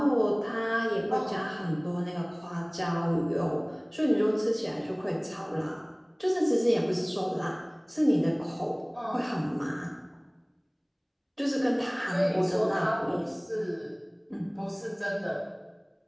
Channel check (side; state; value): both; identical; correlation 1.00